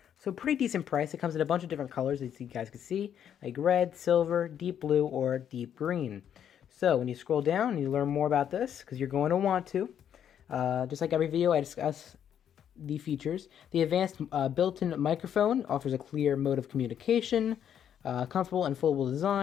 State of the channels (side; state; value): right; quieter; 9.3 dB